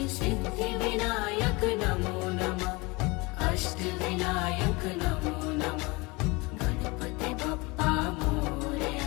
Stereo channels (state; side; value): quieter; right; 25.1 dB